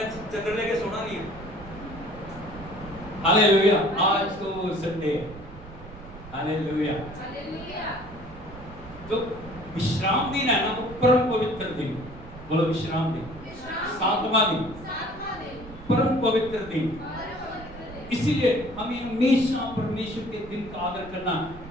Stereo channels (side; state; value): right; noise; rumble, 17 dB below the sound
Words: चंद्र लेके सोना नहीं है। हालेलुया। आज तो संडे है। हालेलुया। तो विश्राम दिन है ना, वो परम पवित्र दिन। बोलो विश्राम दिन। 7वां दिन परम पवित्र दिन। इसीलिए हमें हमेशा परमेश्वर के दिन का आदर करना।